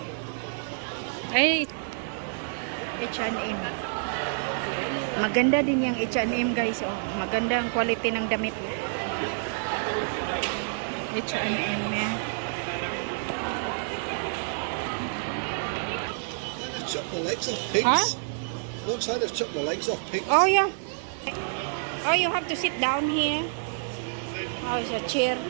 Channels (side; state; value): left; silent; 59 dB below the other